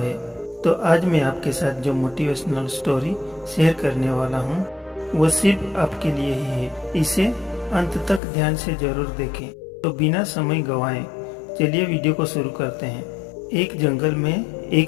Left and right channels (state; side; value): drops out; right; at 8.2 s